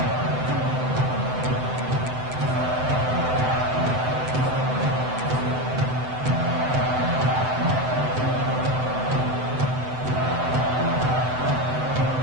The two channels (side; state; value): left; late; 7.9 ms